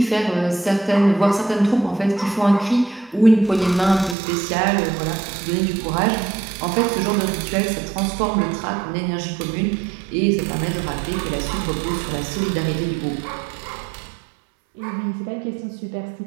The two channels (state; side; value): drops out; left; at 4.2 s